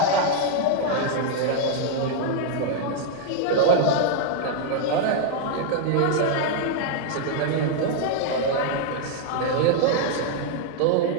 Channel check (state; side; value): different; both; correlation 0.00